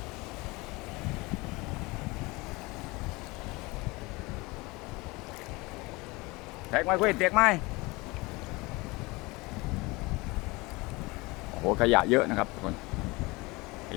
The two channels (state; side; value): quieter; right; 23.7 dB